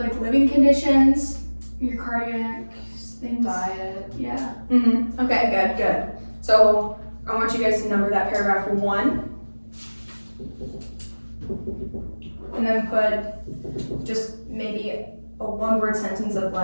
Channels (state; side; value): inverted; both; correlation -1.00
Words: living conditions, your cardiac things. Diet. Yeah. Okay, good. So I want you guys to number that paragraph 1. And then put just maybe a 1-word sentence of